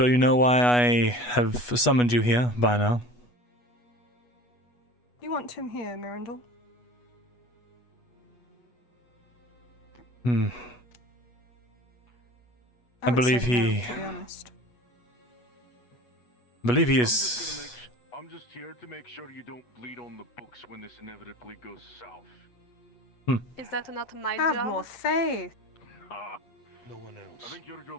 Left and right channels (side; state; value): right; late; 8.2 ms